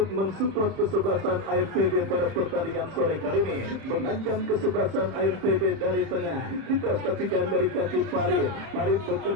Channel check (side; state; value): left; late; 31 ms